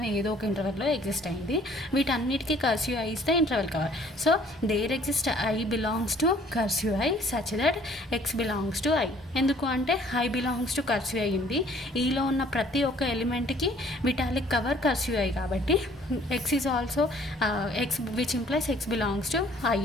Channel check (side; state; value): both; normal; correlation 0.57